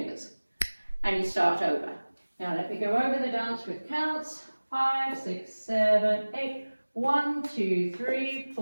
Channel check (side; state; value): both; inverted; correlation -1.00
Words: And you start over. Now let me go over the dance with counts. 5, 6, 7, 8. 1, 2, 3,